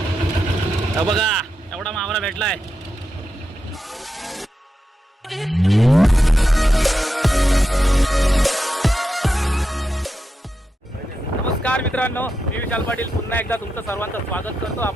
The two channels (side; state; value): both; normal; correlation 0.88